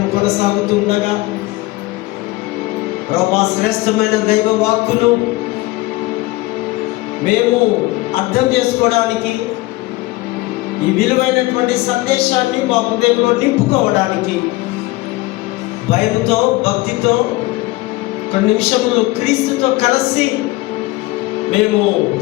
కొనసాగుతూ ఉండగా ప్రభువా, శ్రేష్టమైన దైవ వాక్కును మేము అర్థం చేసుకోవడానికి, ఈ విలువైనటువంటి సందేశాన్ని మా హృదయంలో నింపుకోవడానికి భయంతో, భక్తితో కొన్ని నిమిషములు క్రీస్తుతో కలిసి మేము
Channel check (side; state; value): right; quieter; 20.2 dB